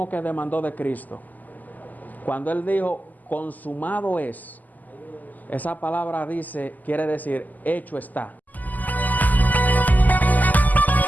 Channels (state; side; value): late; right; 0.082 ms